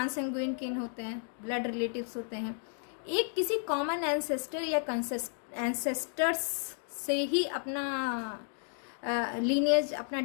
किन होते हैं, ब्लड रिलेटिव्स होते हैं, एक किसी कॉमन एंसेस्टर या एंसेस्टर्स से ही अपना लीनियज, अपना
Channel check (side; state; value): right; silent; 56 dB below the other